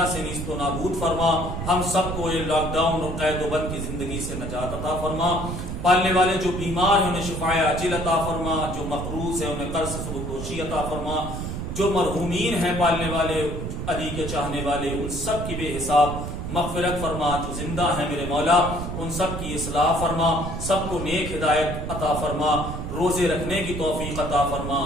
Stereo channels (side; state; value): right; noise; rumble, 5 dB below the sound